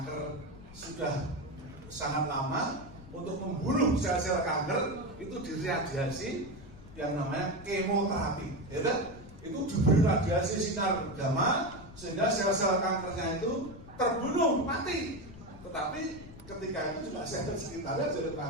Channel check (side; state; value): left; noise; rumble, 17 dB below the sound